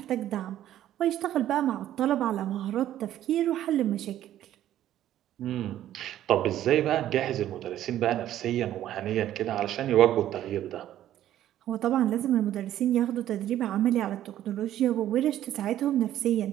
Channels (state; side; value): quieter; left; 12.3 dB